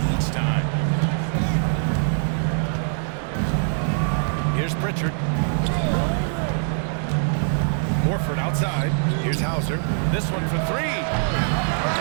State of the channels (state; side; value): silent; left; 63 dB below the other